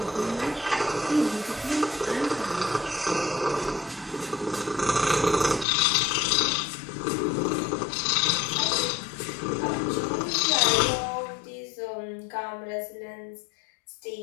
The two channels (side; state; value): right; drops out; at 5.7 s